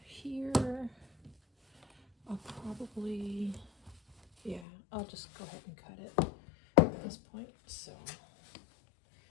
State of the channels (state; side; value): drops out; right; at 4.7 s